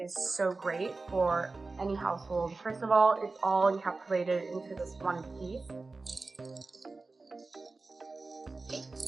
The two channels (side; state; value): left; quieter; 3.6 dB